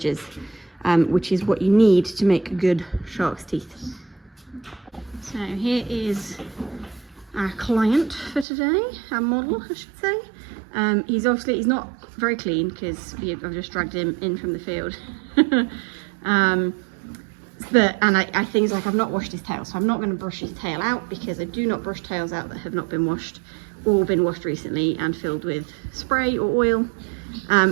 which is what you need to make good shark's teeth. So here is our client for today, our model I should say. He's not very clean because I've just dragged him in from the field. Things like I've not washed his tail, so I'm not going to brush his tail out, because I do not brush tails out that have not been washed or been washed recently and filled with spray or oil.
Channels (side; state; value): left; drops out; at 8.5 s